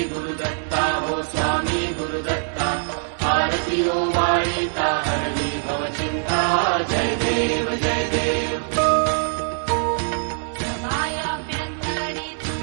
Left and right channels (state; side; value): silent; left; 64 dB below the other